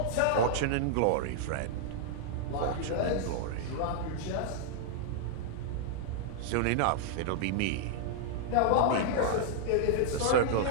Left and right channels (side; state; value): both; different; correlation -0.01